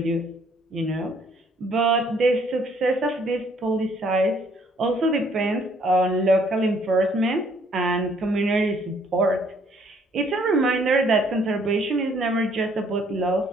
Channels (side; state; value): both; normal; correlation 0.64